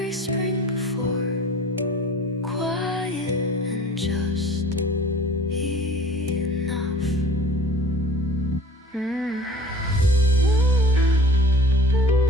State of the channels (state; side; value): normal; both; correlation 0.46